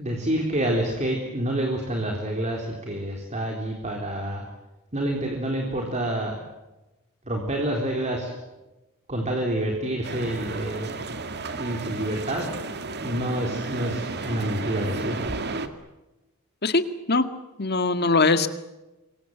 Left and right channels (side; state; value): both; normal; correlation 0.33